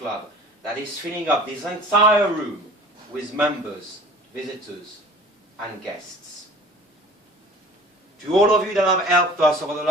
that is filling up this entire room with members, visitors, and guests. To all of you that have helped us over the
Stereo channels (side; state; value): both; normal; correlation 0.44